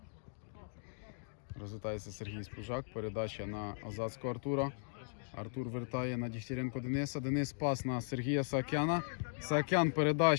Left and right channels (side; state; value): right; silent; digital silence